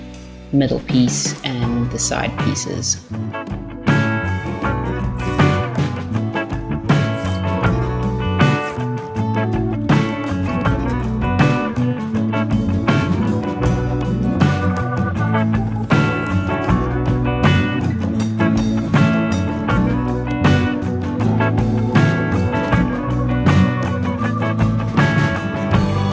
middle piece and the side pieces.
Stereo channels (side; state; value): both; identical; correlation 1.00